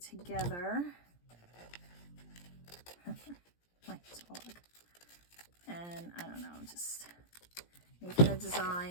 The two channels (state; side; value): late; right; 17 ms